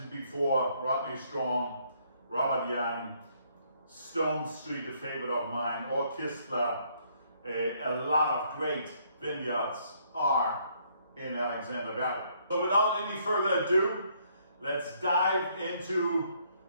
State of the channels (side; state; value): both; inverted; correlation -0.68